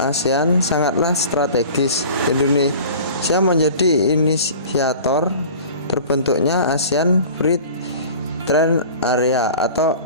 sangatlah strategis. Indonesia menjadi inisiator terbentuknya ASEAN Free Trade Area atau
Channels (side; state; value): both; inverted; correlation -0.41